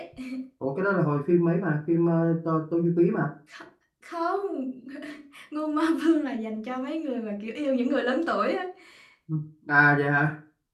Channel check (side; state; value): both; identical; correlation 1.00